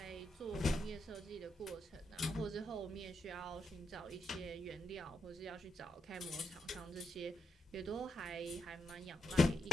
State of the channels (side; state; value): both; normal; correlation 0.82